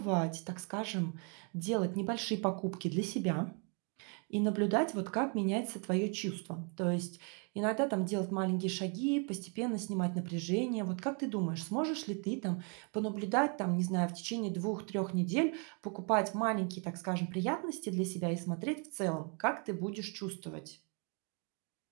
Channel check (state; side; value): quieter; left; 37.7 dB